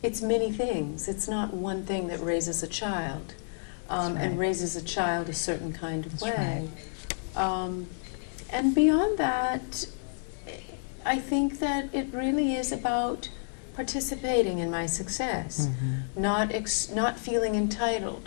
it's many things. It's not one thing that raises a child and raises a child a certain kind of way. And beyond that, I think that it really is about participating in my success, not feeling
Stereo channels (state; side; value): silent; right; 57 dB below the other